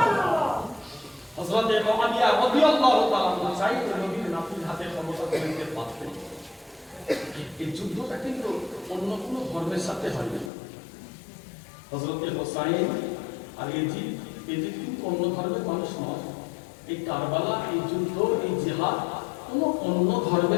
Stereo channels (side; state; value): right; drops out; at 10.5 s